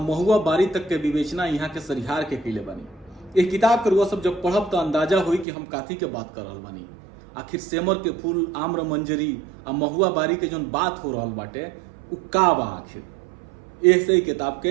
महुआ बारी तक के विवेचना यहाँ के सरिहार के किले बनी। एक किताब के रुआ सब जब पढ़ब तो अंदाजा हुई कि हम काथी के बात कर रहल बानी। आखिर सेमर के फूल, आम्र मंजरी और महुआ बारी के जोन बात हो रहल बाटे उ का बा आखिर। ऐसे ही किताब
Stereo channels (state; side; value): drops out; left; at 5.5 s